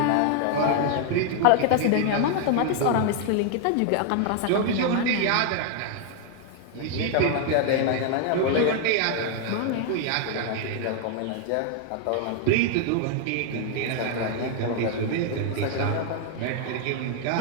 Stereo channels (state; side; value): different; both; correlation 0.00